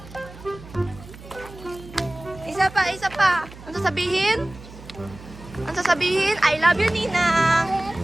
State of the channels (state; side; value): noise; right; hum, 17 dB below the sound